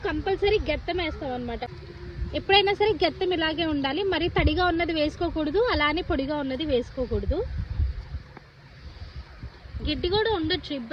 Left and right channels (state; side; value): identical; both; correlation 1.00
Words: కంపల్సరీ గెత్తం వేస్తాం అనమాట. ఎప్పుడైనా సరే గెత్తం ఇలాగే ఉండాలి, మరి తడిగా ఉన్నది వేసుకోకూడదు, అలానే పొడిగా ఉన్నది వేసుకోకూడదు. గడ్డి కూడా ఉండొచ్చు,